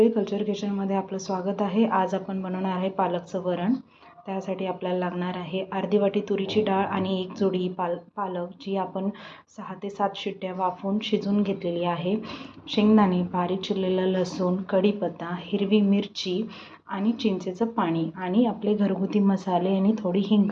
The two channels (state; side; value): identical; both; correlation 1.00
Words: कल्चर किचनमध्ये आपलं स्वागत आहे। आज आपण बनवणार आहे पालकचं वरण। त्यासाठी आपल्याला लागणार आहे अर्धी वाटी तुरीची डाळ आणि एक जोडी पालक, जी आपण 6 ते 7 शिट्ट्या वाफवून शिजवून घेतलेली आहे। शेंगदाणे, बारीक चिरलेला लसूण, कढीपत्ता, हिरवी मिरची आणि चिंचेचं पाणी आणि आपले घरगुती मसाले आणि थोडी